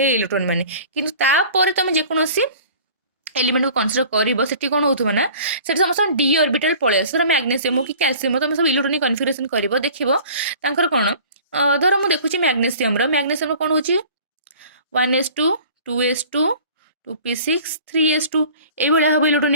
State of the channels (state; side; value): inverted; both; correlation -0.46